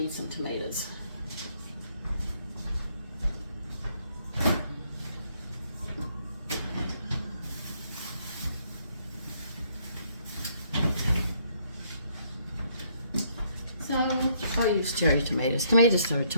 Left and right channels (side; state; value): both; inverted; correlation -0.69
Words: some tomatoes. So I'll use cherry tomatoes. Tomatoes are